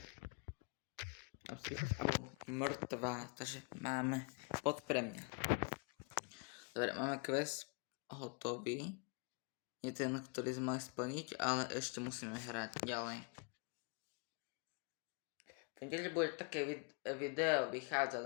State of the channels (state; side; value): quieter; right; 35.4 dB